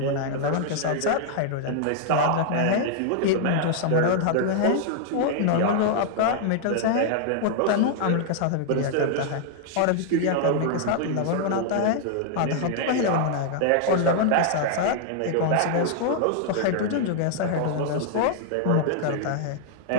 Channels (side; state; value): both; different; correlation -0.01